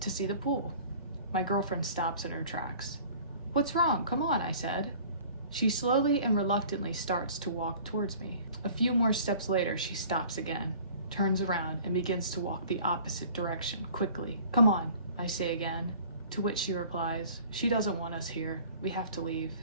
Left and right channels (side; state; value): both; inverted; correlation -0.48